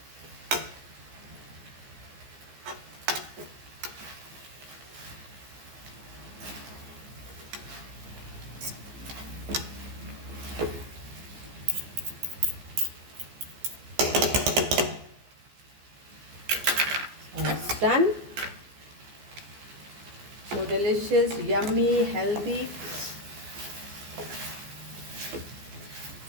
It's done. So delicious, yummy, healthy.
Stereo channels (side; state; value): left; late; 14 ms